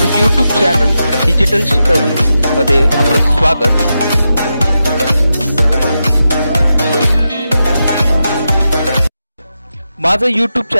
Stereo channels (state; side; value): inverted; both; correlation -0.88